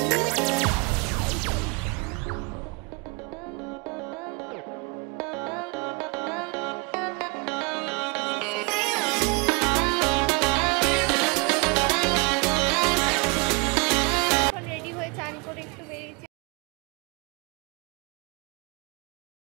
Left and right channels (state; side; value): quieter; left; 30.2 dB